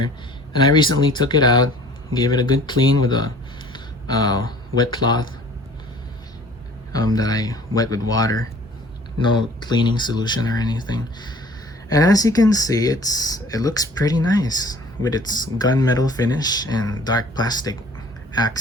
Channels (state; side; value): normal; both; correlation 0.50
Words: and I recently took it out, gave it a good clean with a wet cloth that I wet with water, no cleaning solution or anything. And as you can see, it looks pretty nice with its gunmetal finish and dark plastic